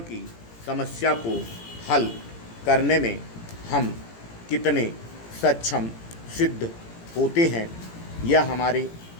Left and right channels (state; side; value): late; right; 17 ms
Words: की समस्या को हल करने में हम कितने सक्षम सिद्ध होते हैं, यह हमारे